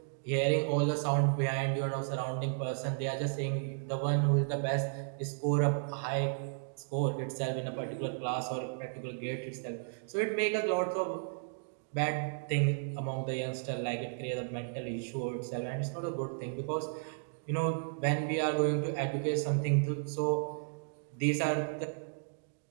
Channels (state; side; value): silent; left; digital silence